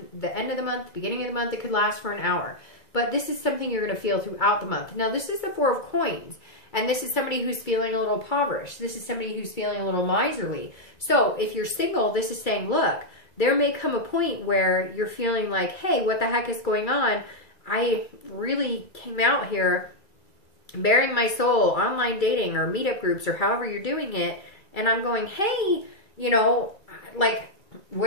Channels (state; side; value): late; right; 2.3 ms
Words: the end of the month, beginning of the month. It could last for an hour. But this is something you're going to feel throughout the month. Now, this is the Four of Coins. And this is somebody who's feeling a little impoverished. This is somebody who's feeling a little miserly. So if you're single, this is saying, look, there may come a point where you're feeling like, hey, what the heck is going on? I really came out here bearing my soul, online dating or meetup groups or however you're doing it. And I'm going, hey, you know, like,